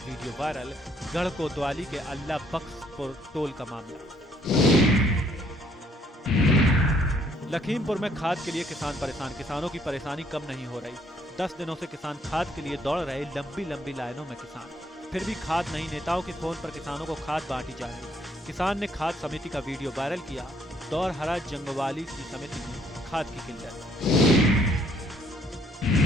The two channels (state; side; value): normal; both; correlation 0.66